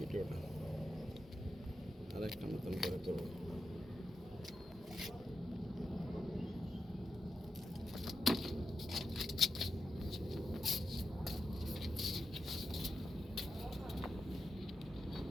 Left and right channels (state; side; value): normal; both; correlation 0.88